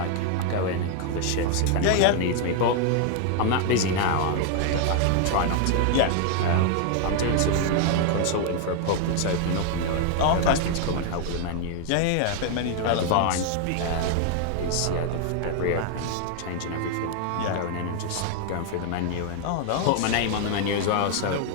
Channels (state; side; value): different; both; correlation 0.00